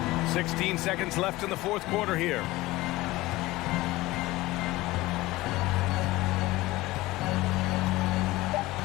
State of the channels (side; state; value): right; quieter; 19.0 dB